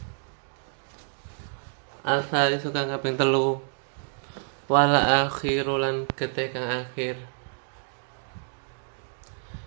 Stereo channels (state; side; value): silent; left; digital silence